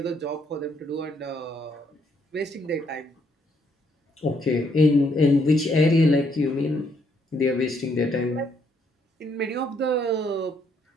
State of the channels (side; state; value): both; normal; correlation 0.71